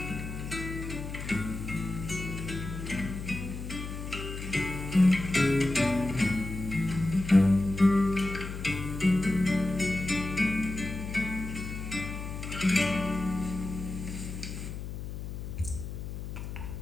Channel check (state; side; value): noise; left; hum, 7 dB below the sound